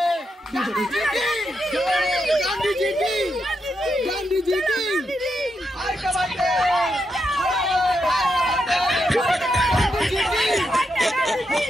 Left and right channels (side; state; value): both; normal; correlation 0.83